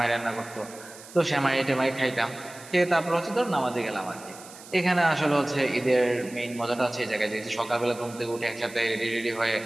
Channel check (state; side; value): noise; right; hiss, 18 dB below the sound